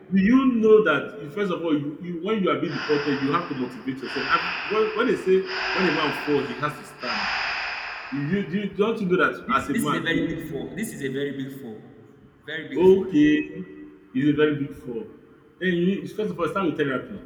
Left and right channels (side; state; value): both; identical; correlation 1.00